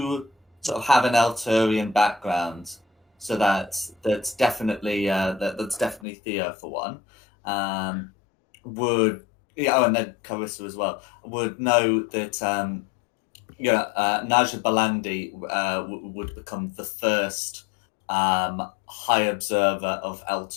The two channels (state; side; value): drops out; right; at 6.0 s